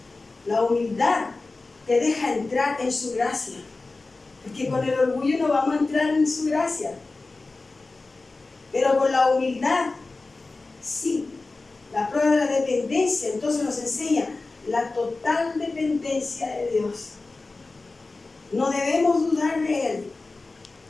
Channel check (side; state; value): right; quieter; 3.5 dB